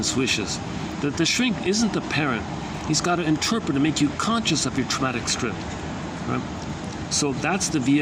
wishes. The shrink isn't the parent. He's got to interpret and make you conscious of your traumatic script, right? So that's the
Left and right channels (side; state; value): both; identical; correlation 1.00